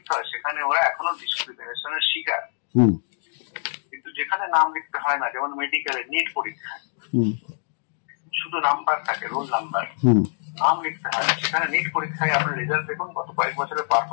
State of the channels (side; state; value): right; silent; digital silence